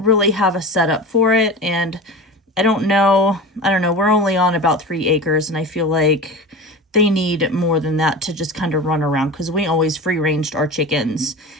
really have a setup for it. And I don't know, we're only on about 3 acres, and I feel like they need more than that to just kind of run around, because we always free ranged our chickens.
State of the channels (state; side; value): normal; both; correlation 0.30